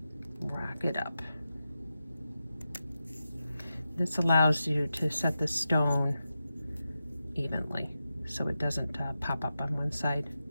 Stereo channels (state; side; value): inverted; both; correlation -0.90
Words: Rock it up. This allows you to set the stone evenly so it doesn't pop up on one side